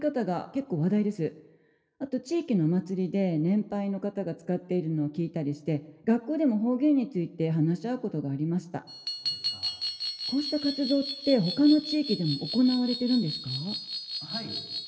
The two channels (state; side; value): identical; both; correlation 1.00